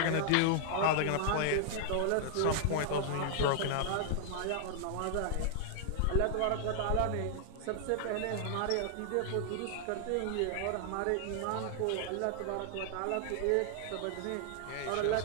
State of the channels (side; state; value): both; different; correlation -0.01